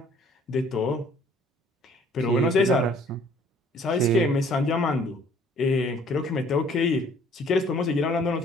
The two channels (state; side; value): normal; both; correlation 0.57